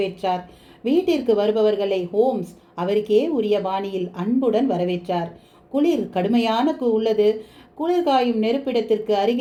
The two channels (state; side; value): identical; both; correlation 1.00